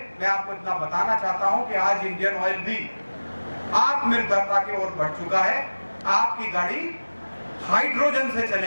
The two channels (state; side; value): inverted; both; correlation -1.00